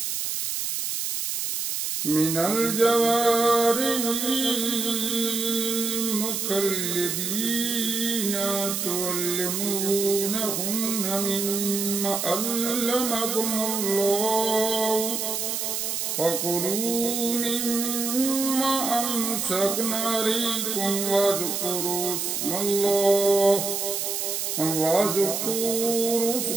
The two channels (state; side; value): noise; right; hiss, 2 dB below the sound